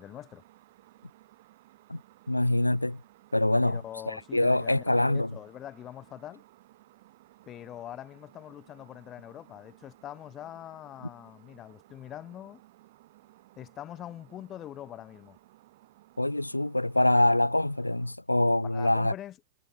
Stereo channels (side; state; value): both; inverted; correlation -0.96